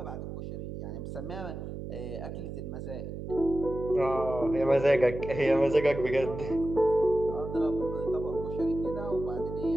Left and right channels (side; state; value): right; noise; hum, 8 dB below the sound